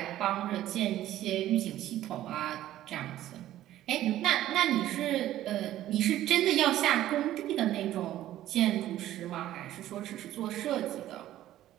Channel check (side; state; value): left; quieter; 13.5 dB